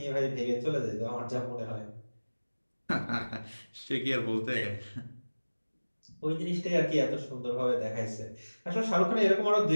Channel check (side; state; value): both; inverted; correlation -1.00